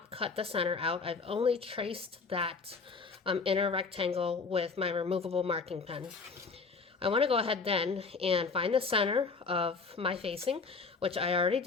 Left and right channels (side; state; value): right; quieter; 4.5 dB